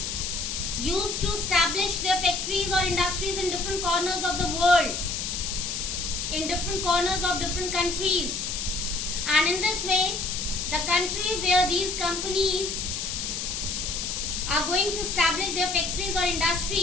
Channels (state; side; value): noise; left; hiss, 3 dB below the sound